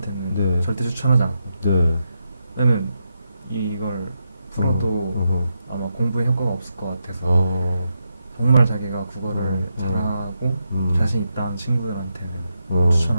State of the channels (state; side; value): inverted; both; correlation -0.85